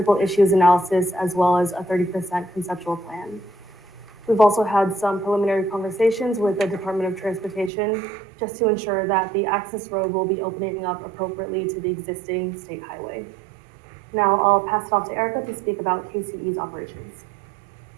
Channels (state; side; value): drops out; left; at 7.7 s